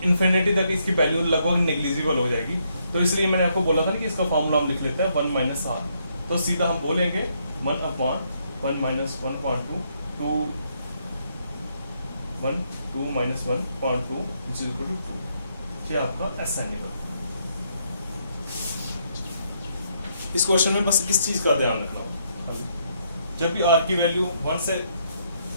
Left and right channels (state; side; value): inverted; both; correlation -0.74